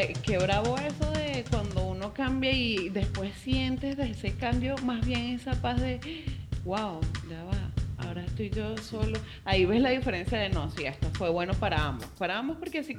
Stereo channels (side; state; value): both; identical; correlation 1.00